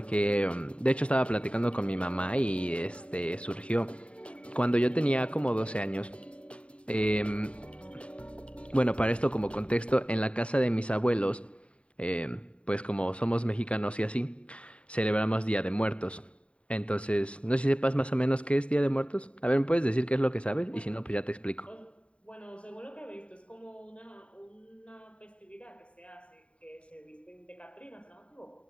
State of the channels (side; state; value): right; late; 0.061 ms